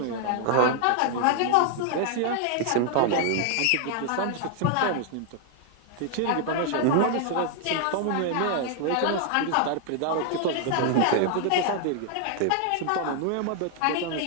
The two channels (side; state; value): both; different; correlation 0.00